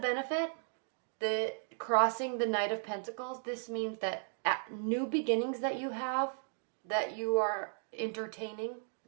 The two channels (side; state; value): left; silent; digital silence